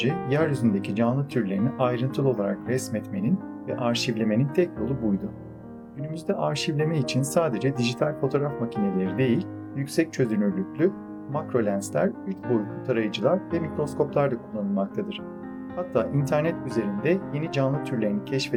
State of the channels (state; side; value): identical; both; correlation 1.00